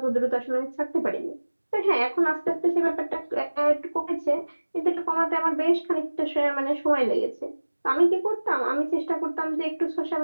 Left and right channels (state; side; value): inverted; both; correlation -1.00